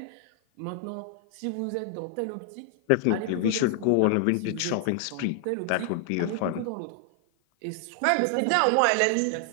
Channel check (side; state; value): both; different; correlation 0.00